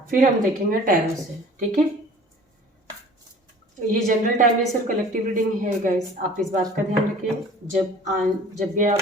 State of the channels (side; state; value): both; normal; correlation 0.46